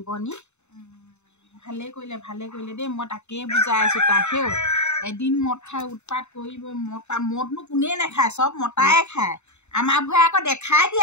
নি। ভালে কৰিলে দেই, মই তাকেই বুজাই আছো তাক। এদিন মদ খাই উৎপাত কৰিব মদনো কোনেই নাখায় চব মতাই খায় আমাৰবোৰে আকৌ দেখাই দিয়ে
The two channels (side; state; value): right; late; 0.82 ms